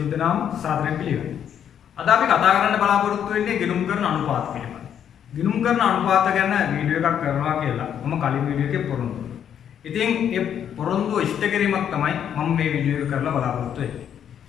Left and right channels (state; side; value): quieter; right; 9.0 dB